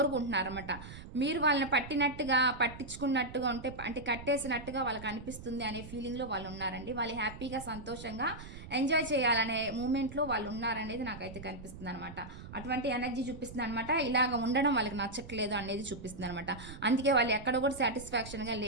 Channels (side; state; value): right; noise; rumble, 13 dB below the sound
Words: మీరు వాళ్ళని పట్టించుకున్నట్టుగా ఉంటే, అంటే కట్టేసినట్టుగా వాళ్ళకి అనిపిస్తుంది అనే ఫీలింగ్లో వాళ్ళు ఉన్నారండి. వాళ్ళు హ్యాపీగా సంతోషంగా ఎంజాయ్ చేయాలనే మూమెంట్లో వాళ్ళు ఉన్నారనేది నాకైతే కనిపిస్తుంది అనమాట. అటువంటి ఎనర్జీ చూపిస్తుంది అనమాట. ఇలాగ ఉండడం వాళ్ళకి నచ్చట్లేదు అనేది చూపిస్తుంది అనమాట. అందుకే వాళ్ళు ఎక్కడ కూడా సాటిస్ఫాక్షన్గా